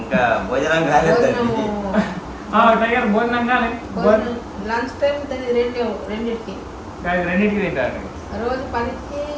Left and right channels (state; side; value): identical; both; correlation 1.00